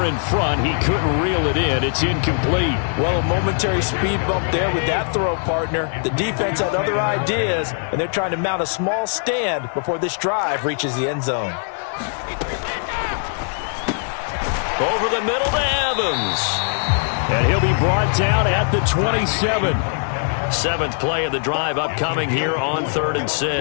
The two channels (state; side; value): silent; right; 65 dB below the other